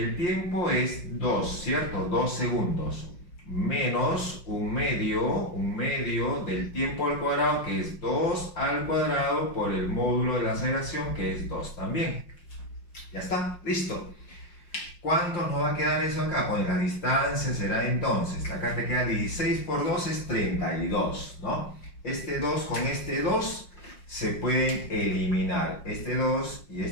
tiempo es 2, ¿cierto? 2 segundos, menos un medio del tiempo al cuadrado, que es 2 al cuadrado por el módulo de la aceleración, que es 2 también. Ya está, listo. ¿Cuánto nos va a quedar eso acá? Pues la distancia será entonces, acá te queda 16 por 2 es 32, ¿no? Este 2 con este 2 se pueden eliminar. Este 2 y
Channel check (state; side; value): late; right; 5.6 ms